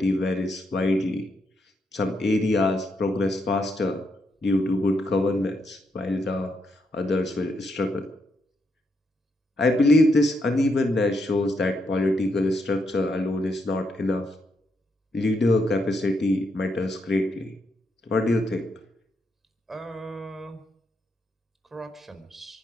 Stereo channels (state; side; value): normal; both; correlation 0.79